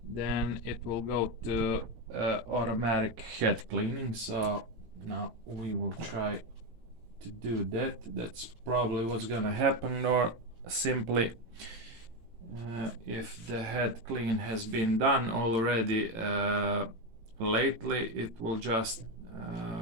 then it will go to automatic head cleaning. So now we will try to do that. That's probably what's gonna happen. Or simply if the head clean has been done already lately, it will just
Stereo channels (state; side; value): late; left; 18 ms